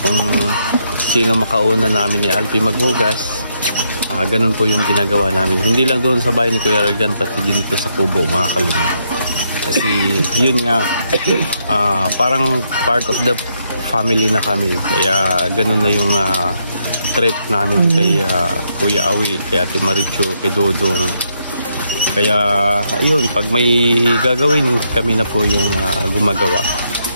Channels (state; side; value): inverted; both; correlation -0.77